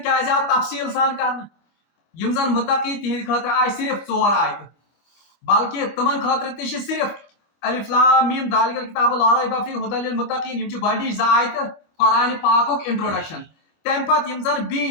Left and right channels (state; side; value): late; right; 25 ms